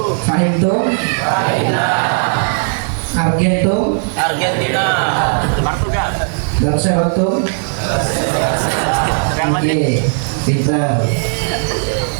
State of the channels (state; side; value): silent; left; digital silence